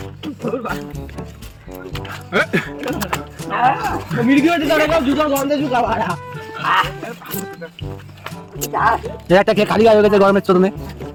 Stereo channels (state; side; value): identical; both; correlation 1.00